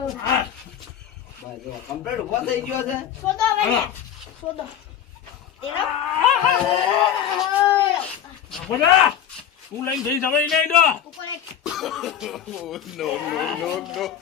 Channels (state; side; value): quieter; right; 9.4 dB